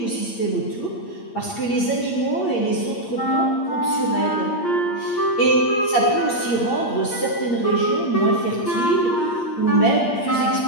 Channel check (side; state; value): right; late; 8.6 ms